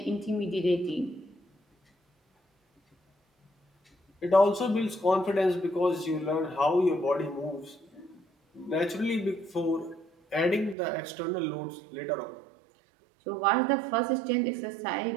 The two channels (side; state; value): left; drops out; at 10.8 s